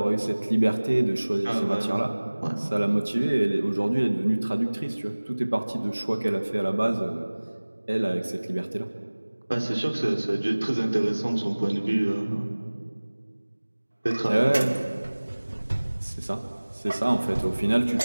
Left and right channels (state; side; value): inverted; both; correlation -1.00